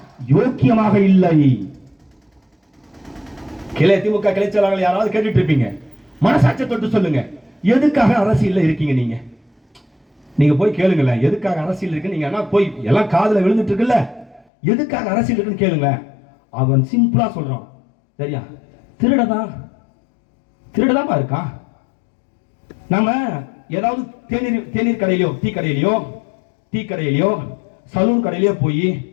யோக்கியமாக இல்லை? திமுக கிளை செயலாளர்கள் யாராவது கேட்டுட்டு இருப்பீங்க, மனசாட்சியை தொட்டு சொல்லுங்க, எதுக்காக அரசியல் இருக்கீங்க? நீங்க போய் கேளுங்களேன், எதுக்காக அரசியல் இருக்கு? நீங்க போய் எல்லாம் காதுல விழுந்துட்டு இருக்குல்ல, எதுக்காக அரசியல் இருக்குன்னு கேளுங்க. அவன் சிம்பிளா சொல்றான், சரியா? திருடதான் இருக்கான். நாம ஏதாவது தேநீர் கடையிலயோ டீ கடையிலயோ சலூன் கடையிலயோ போய்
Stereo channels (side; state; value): right; drops out; at 14.5 s